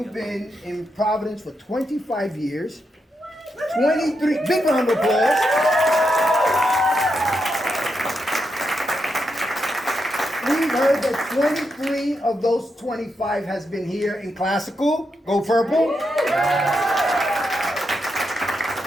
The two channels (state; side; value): normal; both; correlation 0.84